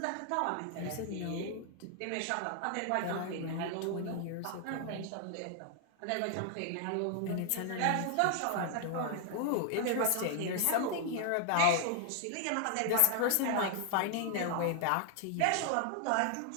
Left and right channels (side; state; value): both; different; correlation 0.00